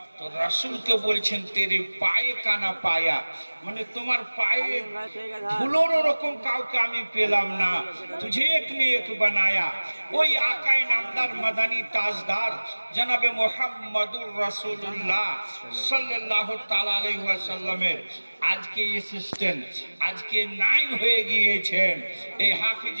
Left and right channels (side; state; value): both; inverted; correlation -1.00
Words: তো রাসূলকে বলছেন তেরে পায়ে কানা পায়া, মানে তোমার পায়ে ধুলোর রকম কাউকে আমি পেলাম না, তুঝে এক নে এক বানায়া। ওই আকায়ে নামদার মাদানী তাজদার জনাবে মুহাম্মদুর রাসূলুল্লাহ সাল্লাল্লাহু তাআলা আলাইহি ওয়াসাল্লামের আজকে অ্যাসিস্ট্যান্ট, আজকে নায়েব হয়ে গিয়েছেন এই